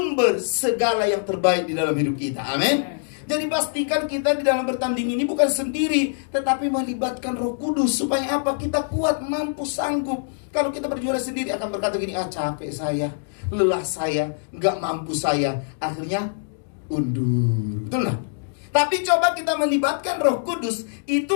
segala yang terbaik di dalam hidup kita. Amin. Jadi pastikan kita di dalam bertanding ini bukan sendiri, tetapi melibatkan Roh Kudus. Supaya apa? Kita kuat, mampu, sanggup. Kalau kita berjuara sendiri akan berkata gini, capek saya, lelah saya, nggak mampu saya. Akhirnya undur. Betul nggak? Tapi coba kita melibatkan Roh Kudus.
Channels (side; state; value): right; silent; digital silence